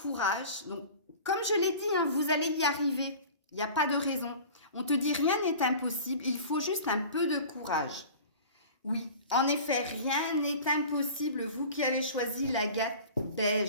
Donc, comme je l'ai dit, hein, vous allez y arriver. Il n'y a pas de raison. On te dit rien n'est impossible, il faut juste un peu de courage. Oui, en effet, rien n'est impossible, vous qui avez choisi l'agate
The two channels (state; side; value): inverted; both; correlation -0.40